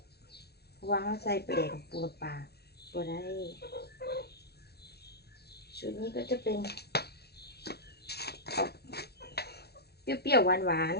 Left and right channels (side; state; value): right; late; 0.47 ms